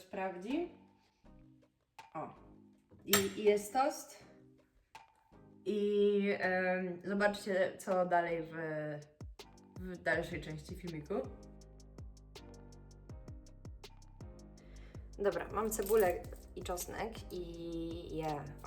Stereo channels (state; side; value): identical; both; correlation 1.00